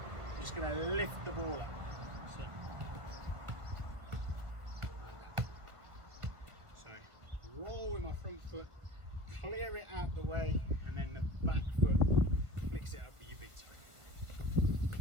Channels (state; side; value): late; left; 1.5 ms